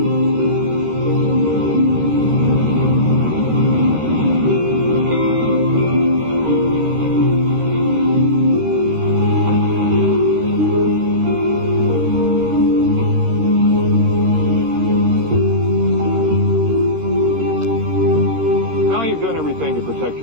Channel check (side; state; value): left; late; 13 ms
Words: Now you've done everything to protect